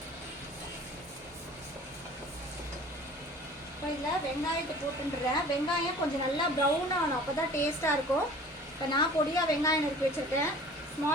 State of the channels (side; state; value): both; normal; correlation 0.46